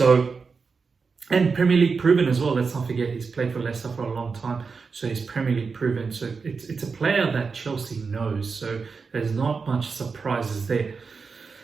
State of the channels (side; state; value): left; quieter; 5.0 dB